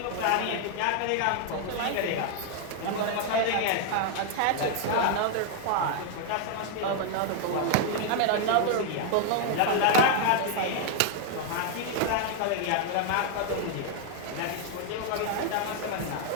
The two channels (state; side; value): different; both; correlation 0.00